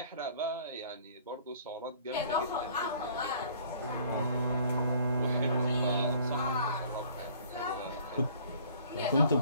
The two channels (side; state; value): both; inverted; correlation -0.55